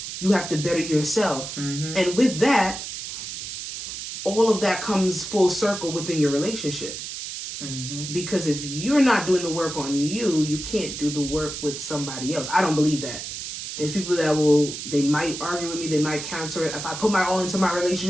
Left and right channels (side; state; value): right; noise; hiss, 7 dB below the sound